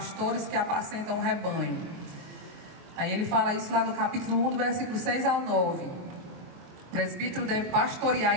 que apacentam o rebanho. Aí ele fala isso lá no capítulo 1, do versículo 6 ao 9. O presbítero deve pastorear a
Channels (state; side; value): late; left; 23 ms